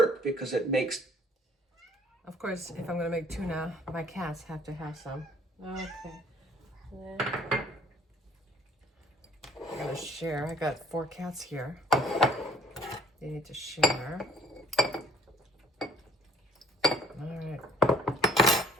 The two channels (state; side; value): normal; both; correlation 0.56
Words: because it makes... Of course, if I'm gonna make tuna, my cats have to have some. Okay. I'm gonna share. I got 4 cats here. They need to share. All right.